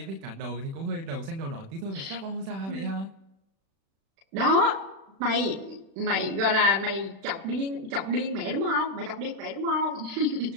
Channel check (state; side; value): late; left; 36 ms